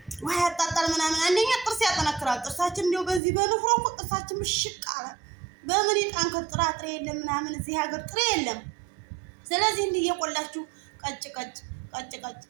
ወይ አጣጣል ምናምን አንደኛ ጥርስ ያጠነክራል። ጥርሳችን እንደው በዚህ በንፍሮ እኮ ጥርሳችን ምሽቅ አለ። በምን ይጣንከር ጥራጥሬ የለም ምናምን እዚህ ሀገር ጥሬ የለም። ስለዚህ እንዲህ እየቆላችሁ ቀጭ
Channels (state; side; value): drops out; left; at 3.2 s